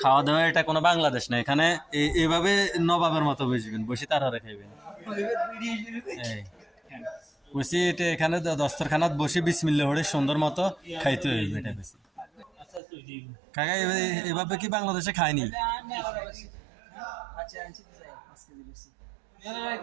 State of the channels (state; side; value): drops out; left; at 12.8 s